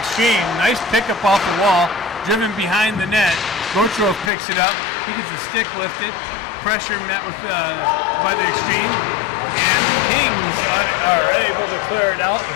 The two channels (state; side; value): drops out; right; at 4.3 s